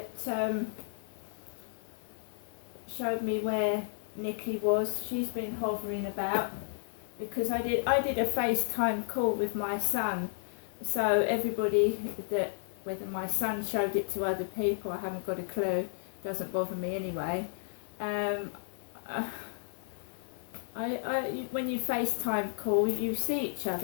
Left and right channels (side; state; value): right; silent; digital silence